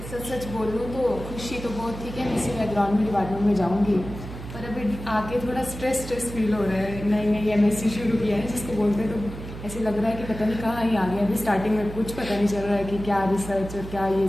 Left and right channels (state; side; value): noise; right; hum, 11 dB below the sound